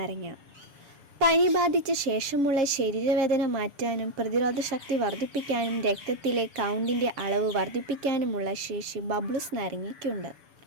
പനി ബാധിച്ച ശേഷമുള്ള ശരീരവേദന മാറ്റാനും പ്രതിരോധശക്തി വർദ്ധിപ്പിക്കാനും രക്തത്തിലെ കൗണ്ടിൻ്റെ അളവ് വർദ്ധിപ്പിക്കാനുമുള്ള ശേഷി ബബ്ലൂസ് നാരങ്ങയ്ക്കുണ്ട്.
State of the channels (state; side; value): late; left; 7.0 ms